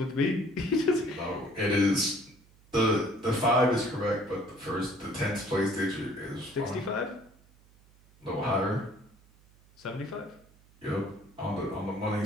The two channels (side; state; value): right; noise; hum, 28 dB below the sound